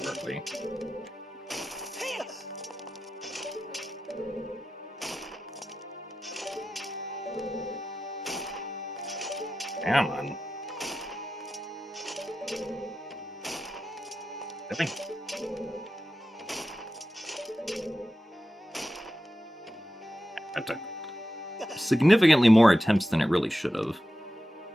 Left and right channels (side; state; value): both; normal; correlation 0.92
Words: early. Come on. Really? That took significantly more attempts than it really should have.